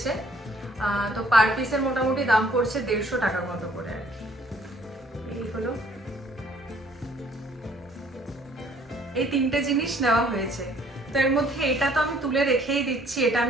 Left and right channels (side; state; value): both; normal; correlation 0.60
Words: তো পার পিসের মোটামুটি দাম পড়ছে 150 টাকার মতো করে আর কি। এই হলো, এই 3টে জিনিস নেওয়া হয়েছে। তো এর মধ্যে এটা তো আমি তুলে রেখেই দিচ্ছি, এটা